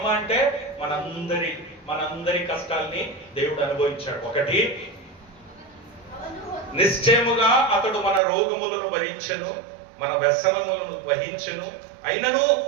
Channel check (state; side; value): drops out; left; at 8.2 s